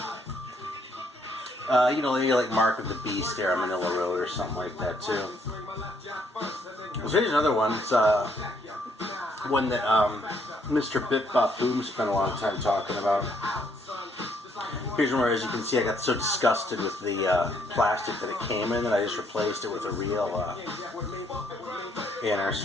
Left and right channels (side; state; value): both; normal; correlation 0.69